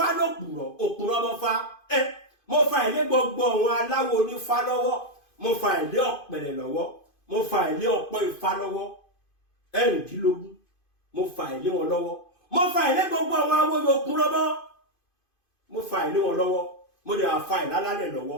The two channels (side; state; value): right; late; 2.5 ms